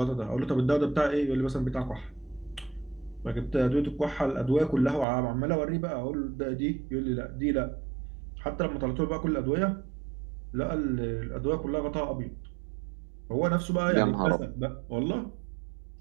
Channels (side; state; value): left; drops out; at 5.1 s